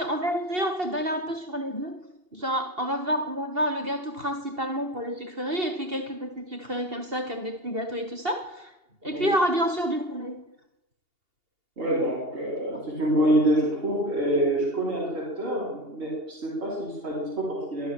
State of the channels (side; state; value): left; late; 2.8 ms